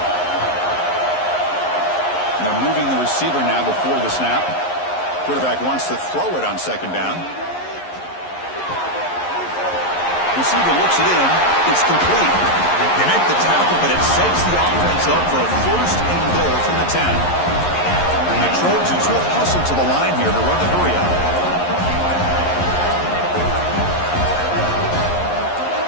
Now moving the receiver now before the snap. Quarterback wants to throw it on second down. Receiver looks it in. It's complete. They make the tackle, but it sets the offense up for a first and goal from the 10. And the Trojans will hustle to the line here to run the hurry up.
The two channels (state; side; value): late; right; 11 ms